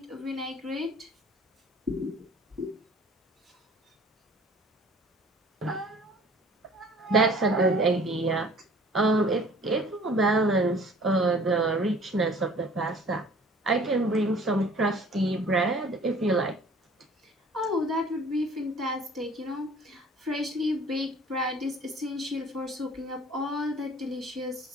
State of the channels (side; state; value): both; normal; correlation 0.50